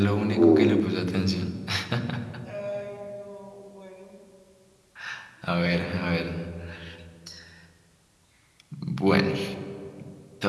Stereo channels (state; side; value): identical; both; correlation 1.00